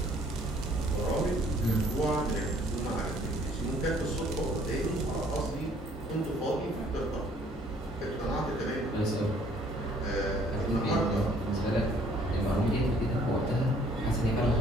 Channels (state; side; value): normal; both; correlation 0.60